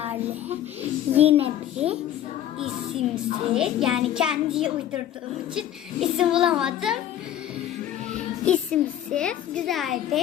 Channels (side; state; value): right; quieter; 11.4 dB